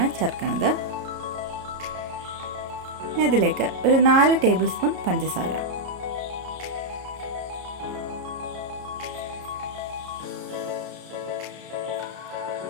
ചേർക്കുന്നത്. ഇതിലേക്ക് ഒരു 4 ടേബിൾ സ്പൂൺ പഞ്ചസാര,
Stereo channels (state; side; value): late; left; 33 ms